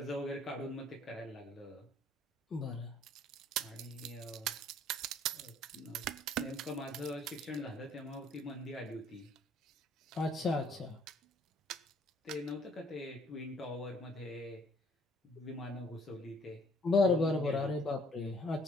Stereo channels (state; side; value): normal; both; correlation 0.61